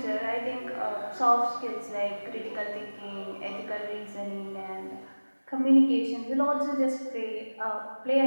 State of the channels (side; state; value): both; inverted; correlation -1.00